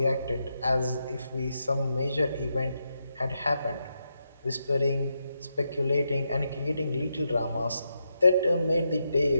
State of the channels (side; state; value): both; inverted; correlation -0.84